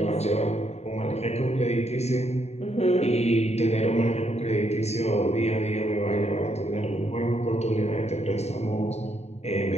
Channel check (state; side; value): late; right; 0.31 ms